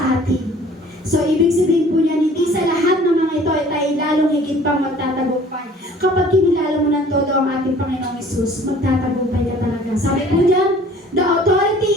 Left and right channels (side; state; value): both; normal; correlation 0.51